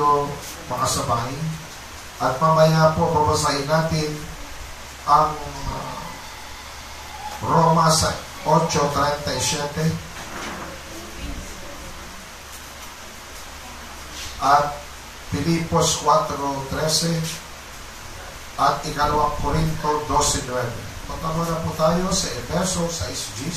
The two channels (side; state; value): both; identical; correlation 1.00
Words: makasabay. At mamaya po babasahin natin ang Roma 8:37 at Filipos 4:13 at ikalawang Korinto 12:9. Patama na po tayo sa Efeso